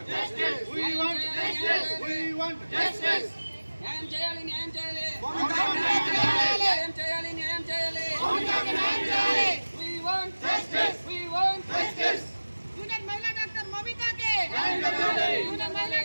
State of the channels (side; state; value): both; inverted; correlation -1.00